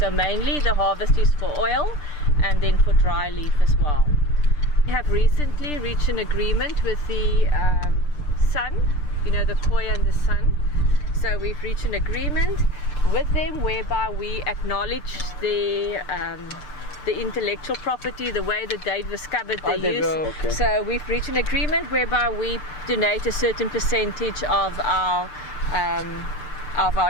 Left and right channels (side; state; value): right; late; 6.7 ms